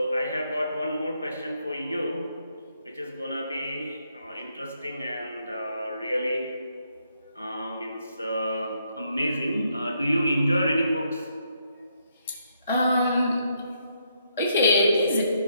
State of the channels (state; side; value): inverted; both; correlation -0.76